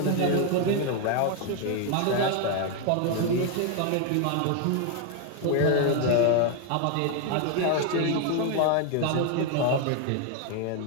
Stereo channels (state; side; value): different; both; correlation 0.01